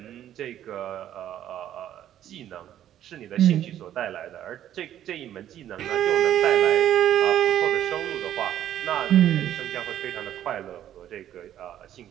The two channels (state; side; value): quieter; left; 11.4 dB